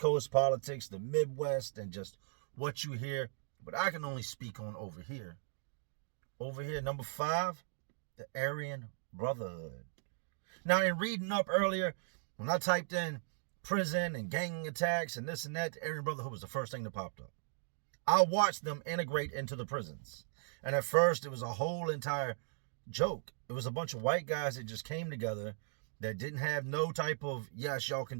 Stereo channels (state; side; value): silent; left; digital silence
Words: politics, the Midwest, and just what you hear. But I can only speak on over here. Over here, number 5, the Aryan Brotherhood. Now, in reading up earlier, when I typed in prison and gang attacks and this and that, the Aryan Brotherhood was the first thing that popped up. I watched them integrate into the prisons. And at first, it was a whole entire joke. It was a bunch of white guys that just came together that didn't have no type of, yes, y'all can